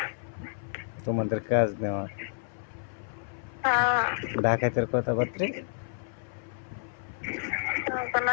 তোমাদের কাজ নেওয়া, ডাকাতের কথাবার্তা।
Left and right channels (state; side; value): silent; right; 57 dB below the other